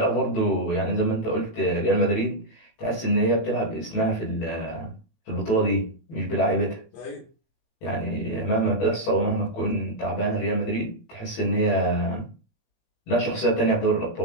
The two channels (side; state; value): right; late; 18 ms